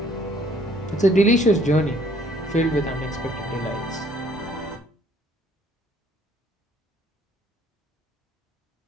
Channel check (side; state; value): both; normal; correlation 0.62